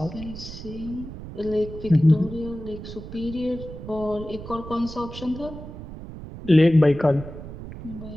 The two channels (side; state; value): right; noise; rumble, 12 dB below the sound